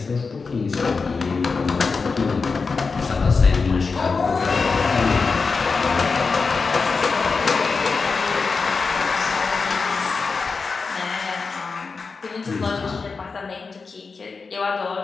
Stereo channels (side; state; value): right; quieter; 4.6 dB